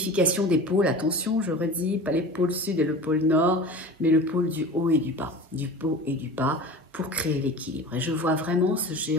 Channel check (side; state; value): both; normal; correlation 0.35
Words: des pôles, attention, je redis, pas les pôles sud et le pôle nord, mais le pôle du haut et du bas, du haut et du bas, pour créer l'équilibre. Et je vois vraiment ce